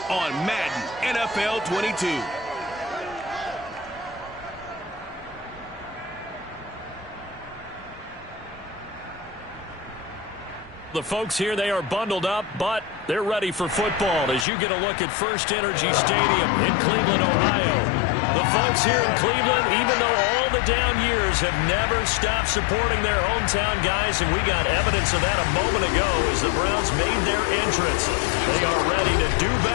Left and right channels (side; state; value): right; drops out; at 14.5 s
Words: on Madden NFL 22. The folks here, they are bundled up, but they're ready for football as you get a look at First Energy Stadium in Cleveland, Ohio. The folks here in Cleveland, even though all the down years, have never stopped supporting their hometown guys, and we got evidence of that a moment ago as the Browns made their entrance. They are ready to do